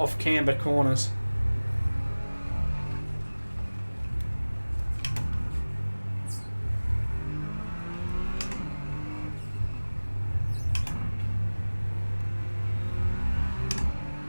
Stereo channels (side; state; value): both; inverted; correlation -1.00